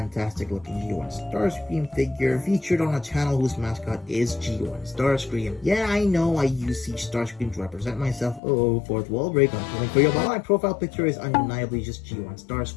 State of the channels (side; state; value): right; drops out; at 8.4 s